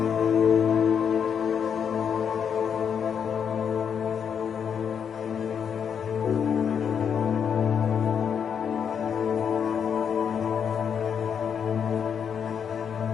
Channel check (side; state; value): right; quieter; 7.5 dB